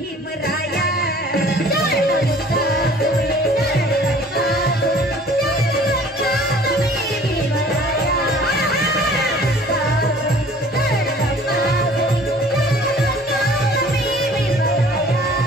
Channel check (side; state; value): both; normal; correlation 0.51